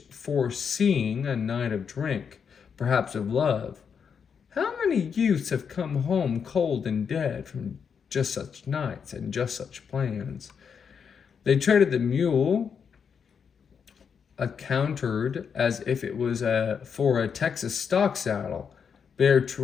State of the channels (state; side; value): quieter; right; 6.7 dB